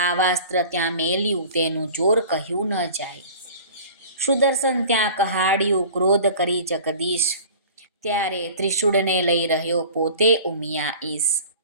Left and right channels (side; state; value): both; inverted; correlation -0.42